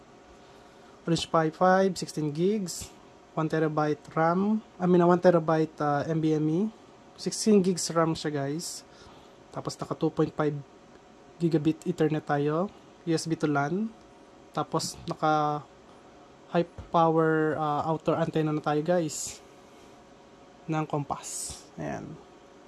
Orange Pi 5, 16 gigs, 1TB RAM, 1TB NVMe, 16 gigs RAM siya guys. Tapos naka 2.5 gigabit Ethernet tayo, USB to LAN. Tapos naka high power outdoor antenna na tayo guys ng Compass. Ayan.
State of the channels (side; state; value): both; identical; correlation 1.00